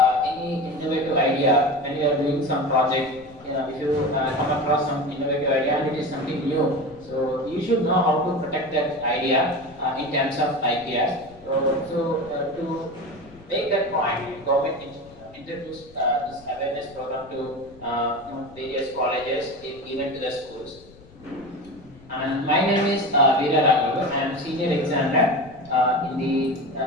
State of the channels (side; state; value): left; noise; rumble, 23 dB below the sound